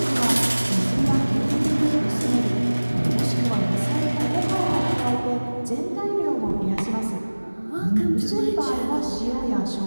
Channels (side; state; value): both; inverted; correlation -1.00